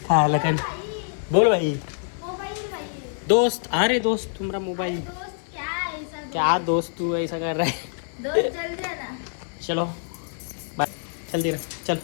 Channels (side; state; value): right; silent; digital silence